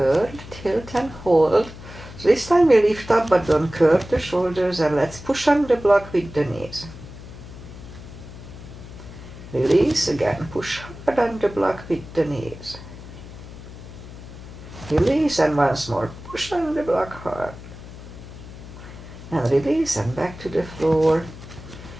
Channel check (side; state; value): left; noise; hum, 15 dB below the sound